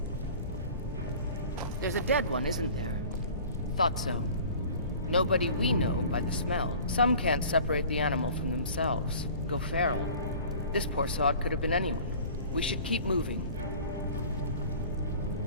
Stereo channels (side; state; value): both; inverted; correlation -0.45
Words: There's a dead one, isn't there? Thought so. Nobody we know by the smell. Some can't separate the animal from themselves. Go feral. This poor sod could have been anyone. We should keep moving.